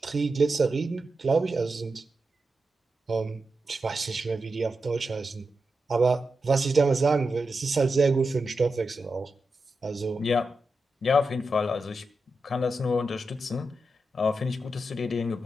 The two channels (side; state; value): both; normal; correlation 0.89